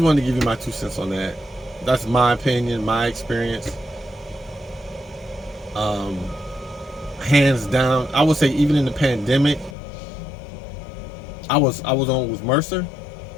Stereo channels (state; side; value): drops out; right; at 9.8 s